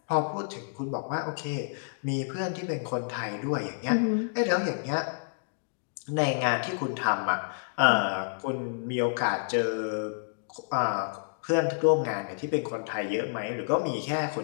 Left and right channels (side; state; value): right; silent; digital silence